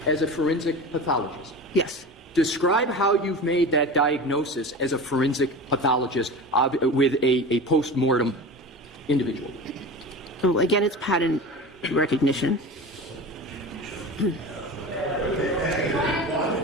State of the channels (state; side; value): normal; both; correlation 0.31